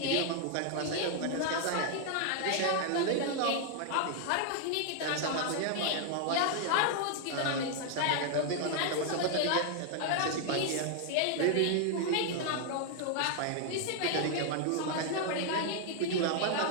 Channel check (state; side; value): different; both; correlation 0.00